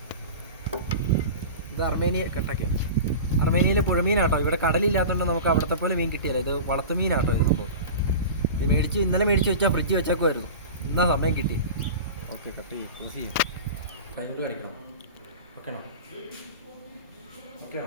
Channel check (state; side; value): inverted; both; correlation -0.32